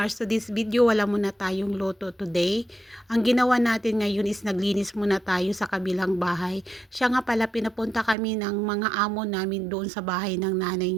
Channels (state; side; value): drops out; left; at 8.2 s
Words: to this video wala muna tayong loto today. Ang ginawa natin ngayon is naglinis muna tayo sa kabilang bahay. Siya nga pala pinapunta kami ng mga amo namin doon sa bahay ng nanay